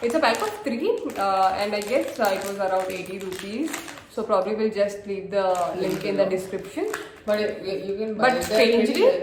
it's a pack of 3 and I guess it was around 80 rupees. So probably we'll just leave the link in the description. But you can buy But it. strangely,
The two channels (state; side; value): identical; both; correlation 1.00